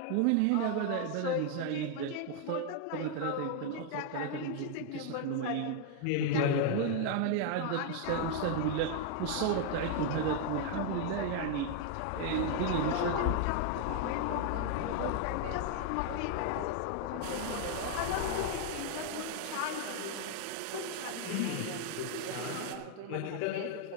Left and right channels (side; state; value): both; different; correlation 0.00